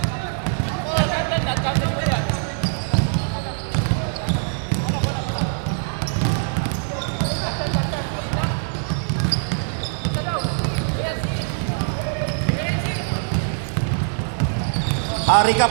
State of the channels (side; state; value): left; silent; digital silence